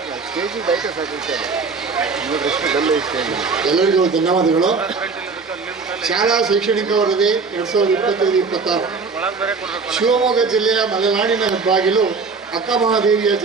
ಎಲ್ಲರಿಗೂ ಧನ್ಯವಾದಗಳು. ಶಾಲಾ ಶೈಕ್ಷಣಿಕ ವರದಿ 2025-26 ಶಿವಮೊಗ್ಗ ಜಿಲ್ಲೆಯ ಮಲೆನಾಡಿನ ಹೆಬ್ಬಾಗಿಲು ಅಕ್ಕಮಹಾದೇವಿಯ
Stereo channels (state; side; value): quieter; left; 4.6 dB